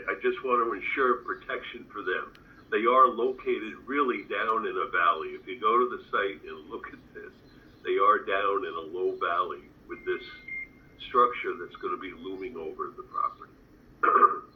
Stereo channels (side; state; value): both; identical; correlation 1.00